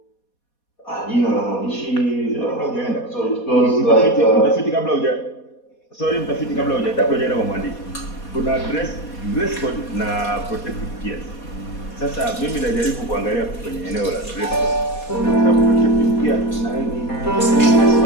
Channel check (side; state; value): right; late; 4.2 ms